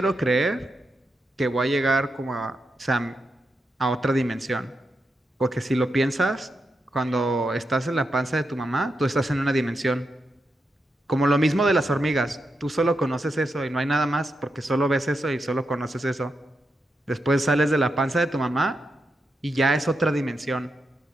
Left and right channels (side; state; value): both; normal; correlation 0.86